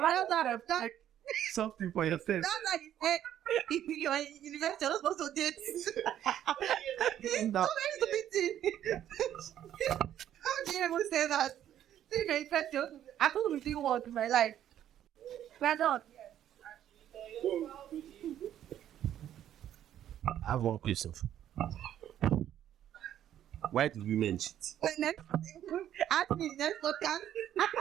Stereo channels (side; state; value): left; quieter; 11.1 dB